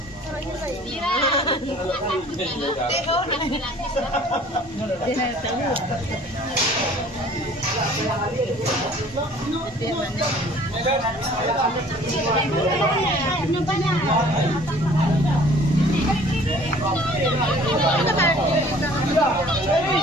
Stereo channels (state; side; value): normal; both; correlation 0.52